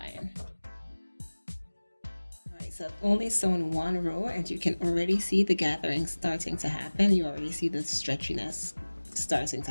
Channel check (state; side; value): inverted; both; correlation -1.00